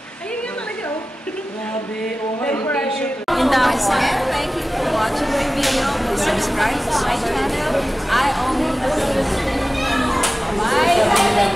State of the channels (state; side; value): normal; both; correlation 0.96